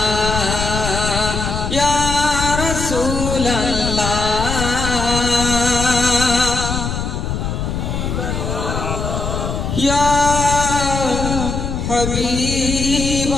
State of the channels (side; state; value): left; noise; rumble, 3 dB below the sound